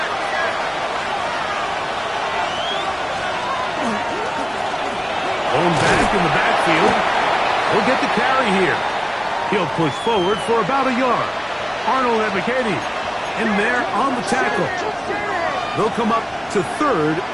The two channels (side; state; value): both; identical; correlation 1.00